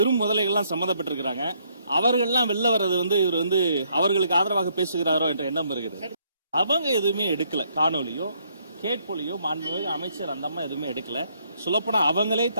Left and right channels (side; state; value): both; inverted; correlation -0.70